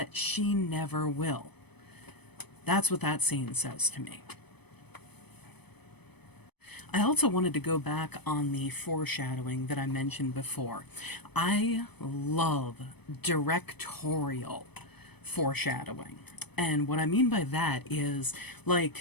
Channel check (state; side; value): late; right; 0.98 ms